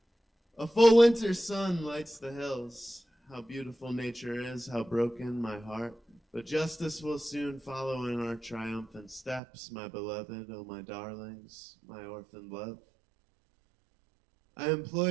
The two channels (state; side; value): drops out; left; at 9.4 s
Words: A full winter sun lights the hills. How beautiful nature is, how broken my heart. But justice will soon follow in our triumphant steps, my beloved, oh my darlings, my orphaned love. I implore